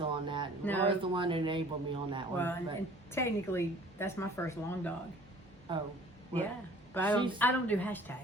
on that. No. Laura's the one that enabled me on that one. Well, and technically, that's my first long dog. Oh. Well, yeah. But I don't do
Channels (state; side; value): normal; both; correlation 0.51